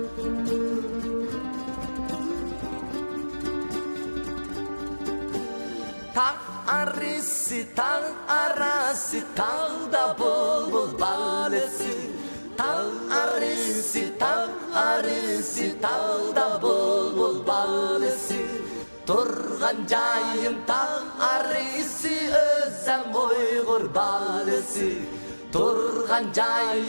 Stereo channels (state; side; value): inverted; both; correlation -1.00